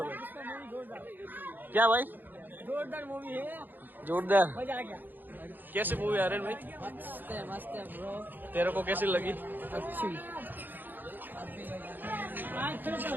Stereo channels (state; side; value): late; left; 0.089 ms